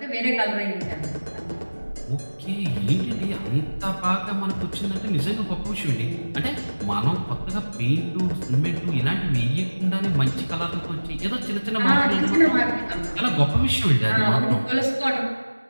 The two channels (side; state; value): both; inverted; correlation -1.00